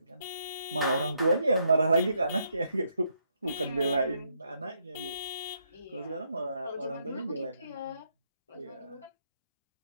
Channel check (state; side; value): inverted; both; correlation -0.75